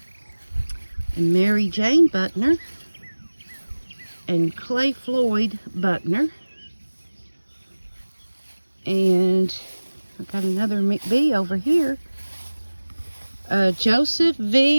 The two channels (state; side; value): inverted; both; correlation -1.00